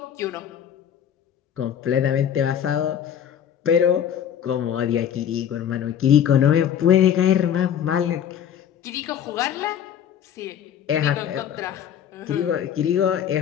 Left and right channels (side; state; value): right; quieter; 9.3 dB